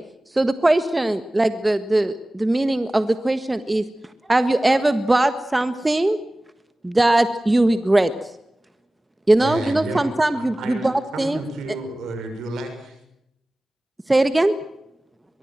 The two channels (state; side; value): normal; both; correlation 0.97